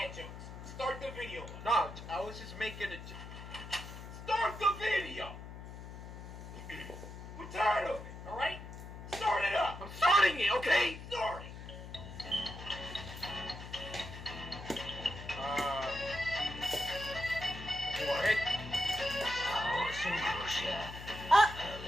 jokes. Start the video. No, I was just making a. Start the video. We're tired of it. All right, start it up. I'm starting it. Okay, start it. Go ahead.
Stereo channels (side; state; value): left; noise; hum, 11 dB below the sound